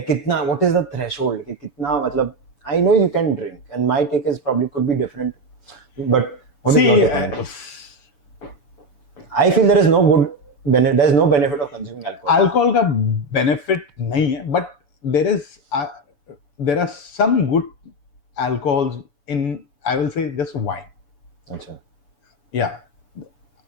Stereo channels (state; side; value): late; right; 7.0 ms